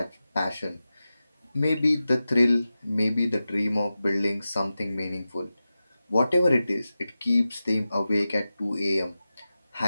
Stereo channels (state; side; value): inverted; both; correlation -0.94